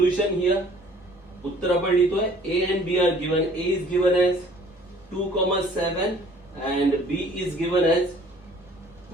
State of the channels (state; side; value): normal; both; correlation 0.54